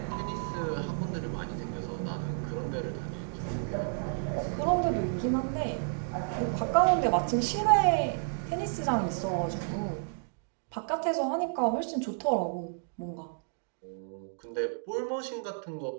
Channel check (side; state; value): left; silent; digital silence